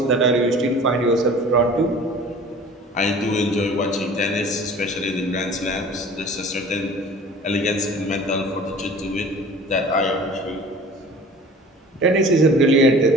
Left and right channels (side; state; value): both; normal; correlation 0.44